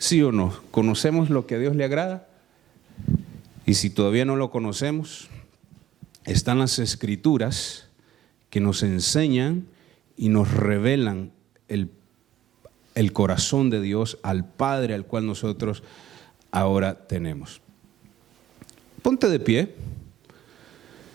o no? ¿Conocemos lo que a Dios le agrada? Y si todavía no lo conocemos, están las Escrituras que nos enseñan y nos revelan el corazón de Dios al Padre al cual nosotros ahora tenemos. Ponte de pie.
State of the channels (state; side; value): quieter; left; 12.4 dB